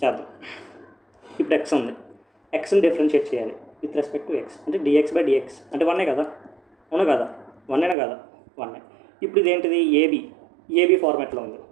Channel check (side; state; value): left; drops out; at 8.0 s